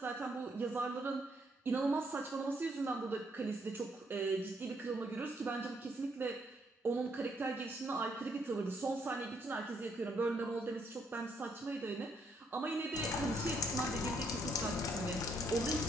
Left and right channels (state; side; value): normal; both; correlation 0.72